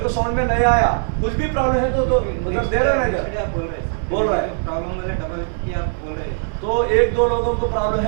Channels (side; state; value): left; silent; digital silence